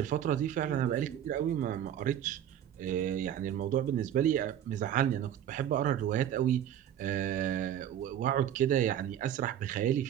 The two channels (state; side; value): quieter; left; 10.5 dB